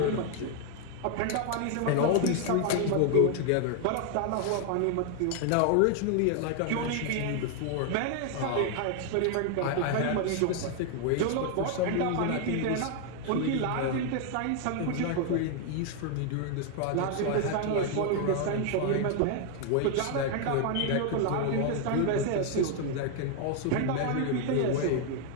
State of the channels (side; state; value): both; different; correlation 0.00